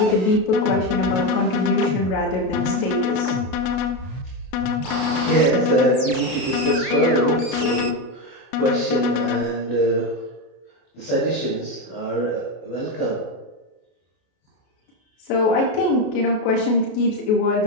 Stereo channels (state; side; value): late; right; 33 ms